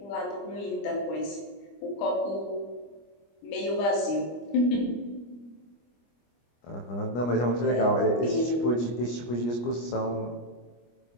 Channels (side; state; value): right; late; 25 ms